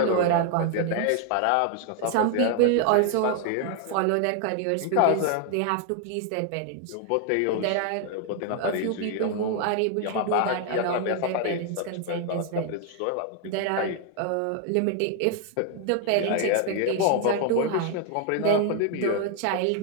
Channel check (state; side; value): different; both; correlation 0.00